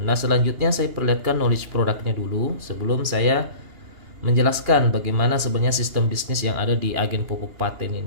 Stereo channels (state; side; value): late; left; 2.8 ms